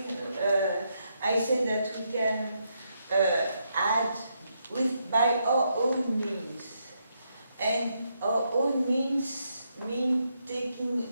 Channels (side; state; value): both; inverted; correlation -0.79